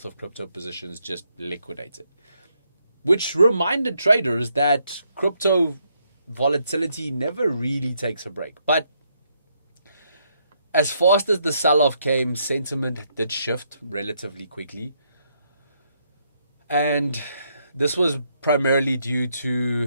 of crypto positions just liquidated, which reminded traders that crypto volatility never really takes a break. But as fast as the sell-off came, sentiment did shift relatively quickly, and this was primarily due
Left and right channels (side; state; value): both; inverted; correlation -0.75